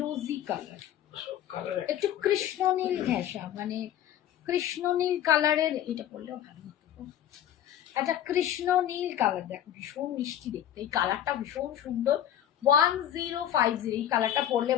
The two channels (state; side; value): quieter; right; 10.8 dB